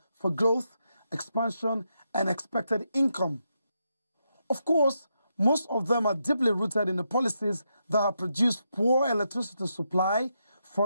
for growth, expansion, and expected income. Of course, most of them are deeply rooted in the policies that have produced poor electricity supply,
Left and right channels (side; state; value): both; inverted; correlation -0.83